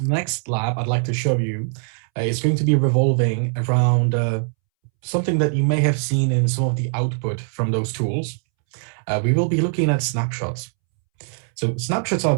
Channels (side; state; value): left; silent; 64 dB below the other